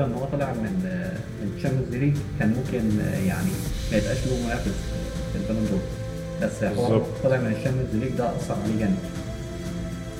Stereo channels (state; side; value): identical; both; correlation 1.00